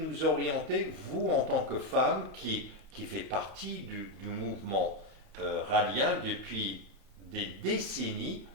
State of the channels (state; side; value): normal; both; correlation 0.06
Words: orienter, vous en tant que femme qui fait partie du mouvement rallien depuis des décennies,